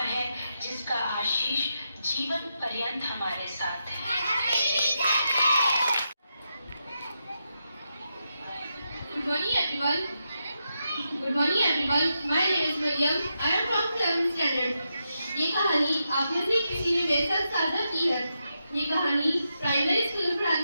है जिसका आशीष जीवन पर्यंत हमारे साथ है। Good morning everyone. Good morning everyone. My name is Mariam. I am from 7th standard. ये कहानी आप में से किसी ने मेरे साथ साझा की है। ये कहानी प्राइमरी स्कूल में पढ़ाने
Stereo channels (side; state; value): both; inverted; correlation -0.85